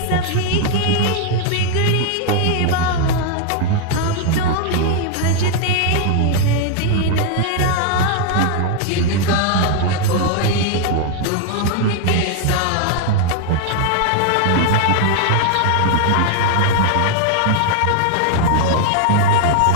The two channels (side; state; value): both; different; correlation 0.00